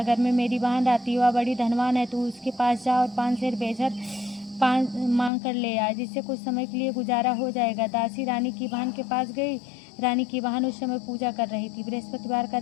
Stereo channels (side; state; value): right; drops out; at 5.3 s